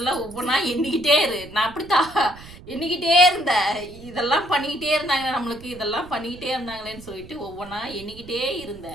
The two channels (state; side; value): noise; right; rumble, 18 dB below the sound